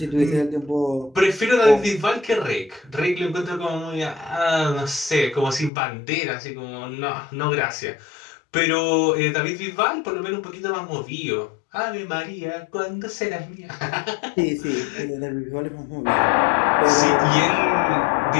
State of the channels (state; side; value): drops out; right; at 5.7 s